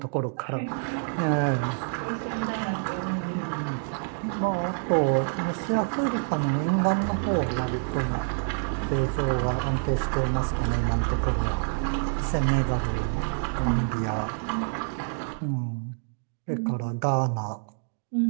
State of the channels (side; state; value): left; silent; 56 dB below the other